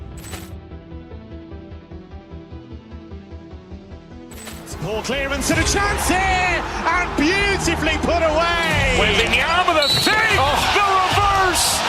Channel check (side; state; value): both; identical; correlation 1.00